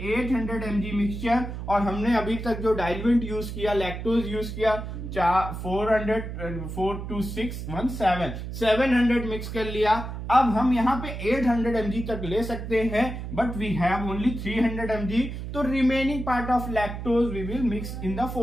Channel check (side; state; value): right; noise; hum, 7 dB below the sound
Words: mg मिक्सचर, और हमने अभी तक जो डाइल्यूएंट यूज किया लैक्टोज यूज किया 400 4 2 6 1 7 700 मिक्स कर लिया। अब हम यहाँ पे 800 mg तक ले सकते हैं, but we have only 300 mg, तो remaining part of lactose we will mix in the